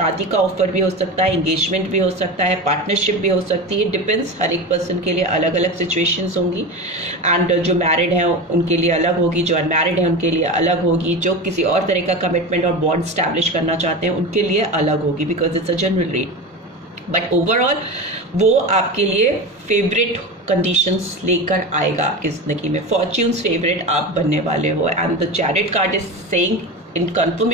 का ऑफर भी हो सकता है, एंगेजमेंट भी हो सकता है, पार्टनरशिप भी हो सकती है, डिपेंड्स, हर एक पर्सन के लिए अलग अलग सिचुएशंस होंगी। एंड जो मैरिड है उनके लिए अलग होगी, जो अनमैरिड है उनके लिए अलग होगी, जो किसी और तरह का कमिटमेंट और बॉन्ड स्टैब्लिश करना चाहते हैं उनके लिए अलग होगी, because it's a general read. But overall वो आपके लिए फेवरेट कंडीशंस लेकर आएगा आपकी जिंदगी में। फॉर्च्यून्स फेवरेट आप बनने वाले हो। And the chariot card is saying in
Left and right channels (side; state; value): both; normal; correlation 0.25